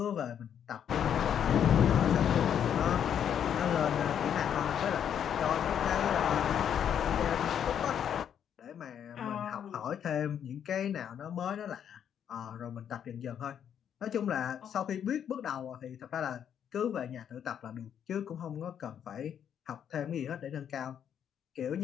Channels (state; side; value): quieter; right; 8.9 dB